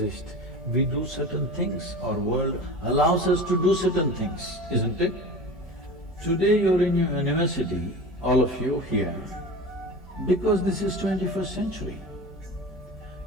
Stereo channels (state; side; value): normal; both; correlation 0.33